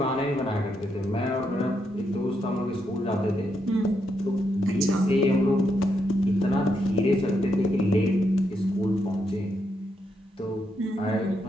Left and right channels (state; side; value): normal; both; correlation 0.80